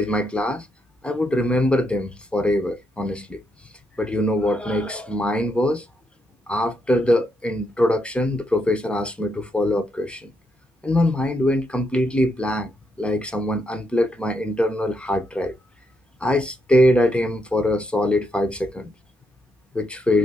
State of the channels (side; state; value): both; normal; correlation 0.79